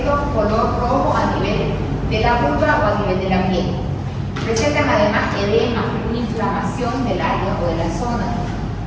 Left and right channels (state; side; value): identical; both; correlation 1.00